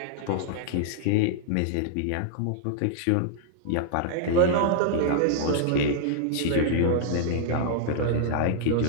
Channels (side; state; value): both; different; correlation -0.01